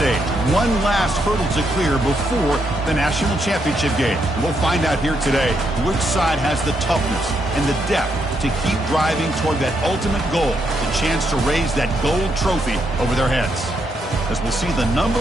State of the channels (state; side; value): normal; both; correlation 0.78